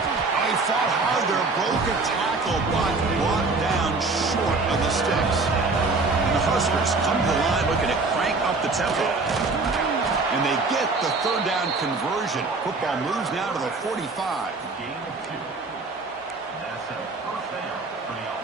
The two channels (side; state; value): left; quieter; 3.8 dB